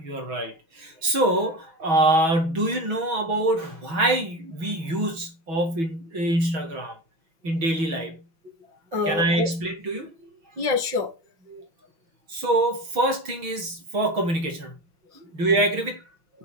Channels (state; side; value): late; left; 6.2 ms